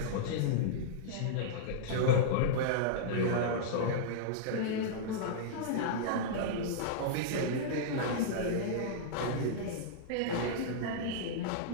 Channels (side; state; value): both; different; correlation -0.02